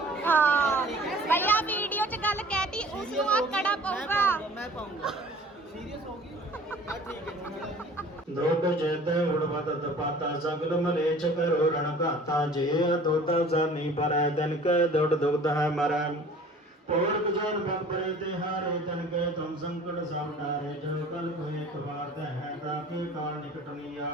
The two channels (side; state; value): both; normal; correlation 0.48